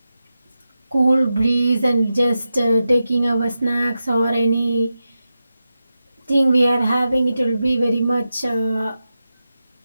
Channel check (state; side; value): inverted; both; correlation -0.90